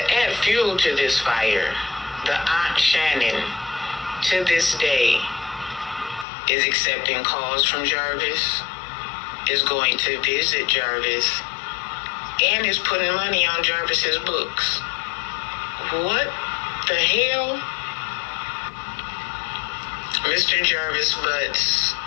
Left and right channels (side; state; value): right; drops out; at 6.2 s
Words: fuel to this fire, the Aunt Shannon, to this day, is accepting calls from Jarvis, is going to visit Jarvis, and is putting money on Jarvis's books. What the hell? Mr. Jarvis Butts'